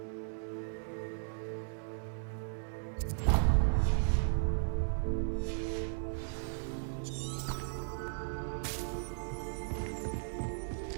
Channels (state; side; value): silent; left; 54 dB below the other